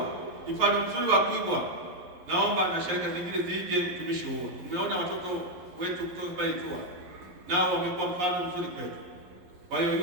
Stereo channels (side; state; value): left; late; 11 ms